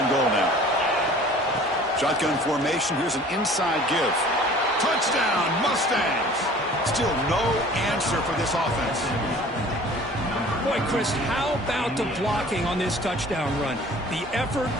goal now. Shotgun formation. Here's an inside give. Touchdown, Mustangs. Still no answer for this offense. Boy, Chris, how about the blocking on this touchdown run? The effort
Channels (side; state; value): both; normal; correlation 0.48